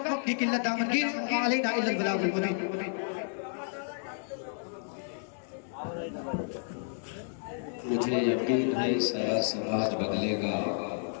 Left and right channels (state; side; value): silent; right; digital silence